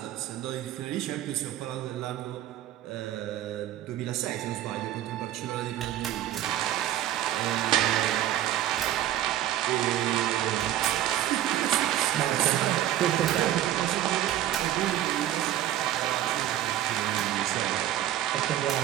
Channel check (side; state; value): left; quieter; 12.5 dB